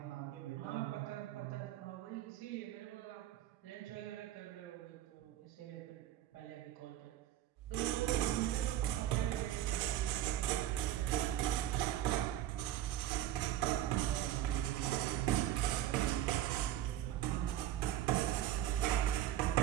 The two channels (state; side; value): quieter; left; 12.8 dB